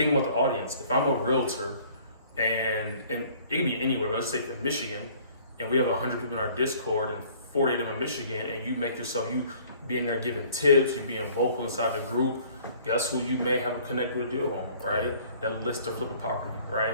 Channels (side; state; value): both; inverted; correlation -0.55